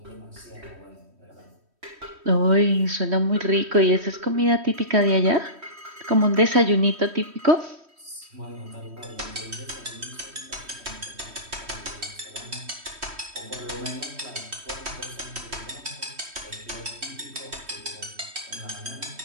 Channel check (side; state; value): left; late; 3.1 ms